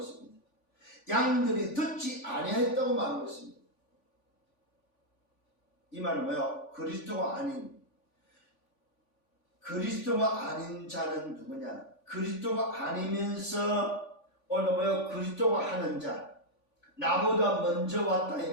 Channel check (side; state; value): right; late; 3.5 ms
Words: 양들이 듣지 아니했다고 말하고 있습니다. 이 말은 뭐예요? 그리스도가 아닌 자는 누구냐? 그리스도가 아니면서 오늘 뭐예요? 그리스도가 하는 자, 나보다 먼저 왔다 이